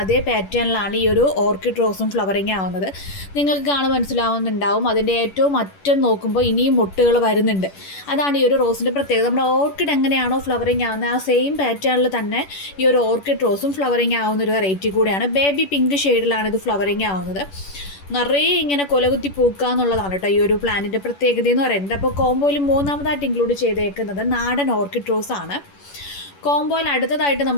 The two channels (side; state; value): right; late; 11 ms